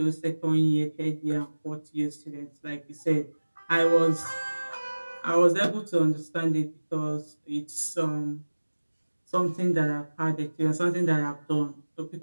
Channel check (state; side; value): inverted; both; correlation -1.00